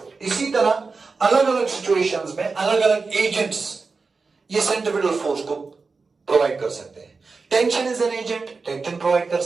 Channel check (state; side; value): quieter; left; 4.4 dB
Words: इसी तरह अलग अलग सिचुएशंस में अलग अलग एजेंट्स ये सेंट्रिपिटल फोर्स को प्रोवाइड कर सकते हैं। Tension is an agent, tension provide कर